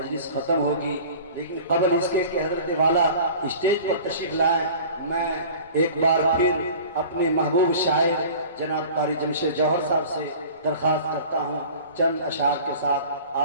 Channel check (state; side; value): inverted; both; correlation -0.42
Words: ختم ہوگی۔ لیکن قبل اس کے کہ حضرت والا اسٹیج پر تشریف لائیں، میں ایک بار پھر اپنے محبوب شاعر جناب قاری جمشید جوہر صاحب سے درخواست کرتا ہوں چند اشعار کے ساتھ